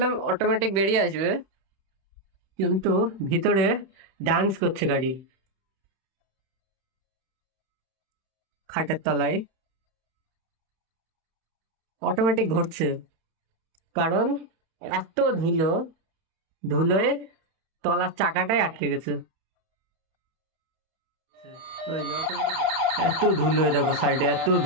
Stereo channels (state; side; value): late; left; 31 ms